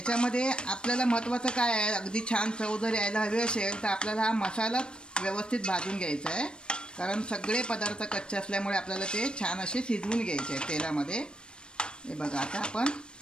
आपल्याला महत्त्वाचं काय आहे, अगदी छान चव जर यायला हवी असेल तर आपल्याला हा मसाला व्यवस्थित भाजून घ्यायचा आहे, कारण सगळे पदार्थ कच्चे असल्यामुळे आपल्याला ते छान असे शिजवून घ्यायचे आहेत तेलामध्ये. हे बघा, आता आपण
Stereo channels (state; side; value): late; right; 0.053 ms